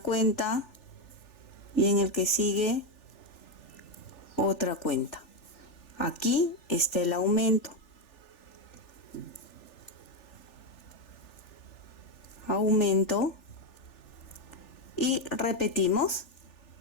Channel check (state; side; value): late; right; 3.4 ms